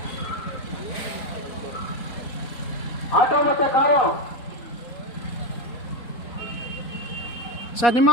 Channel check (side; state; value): right; late; 4.2 ms